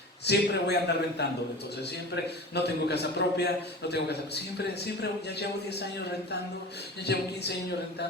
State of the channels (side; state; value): both; normal; correlation 0.34